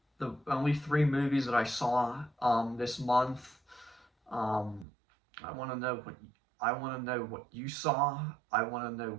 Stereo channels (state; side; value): drops out; left; at 4.9 s